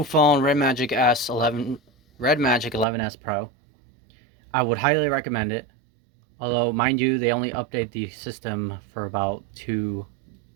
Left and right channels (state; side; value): drops out; left; at 2.9 s